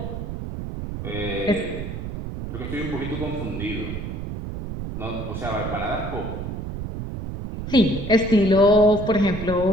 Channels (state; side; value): noise; right; rumble, 6 dB below the sound